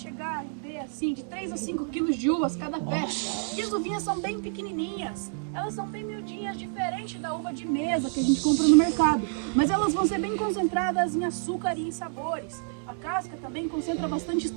a render assim de 3 a 5 quilos de uvas cada pé. E as uvinhas são bem pequenininhas, elas são bem miudinhas, diferente da uva de mesa que a gente compra no mercado. Mas elas vão ser bem concentradas em açúcar e em sabores. A casca também concentra bastante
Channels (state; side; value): silent; left; digital silence